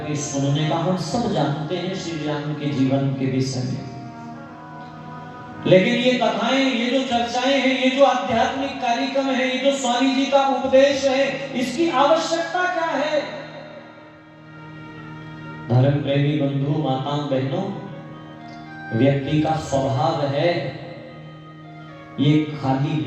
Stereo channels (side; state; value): both; identical; correlation 1.00